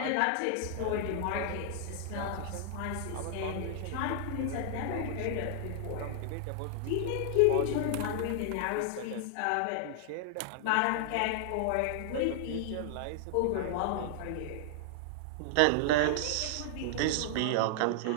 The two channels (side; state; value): both; different; correlation -0.01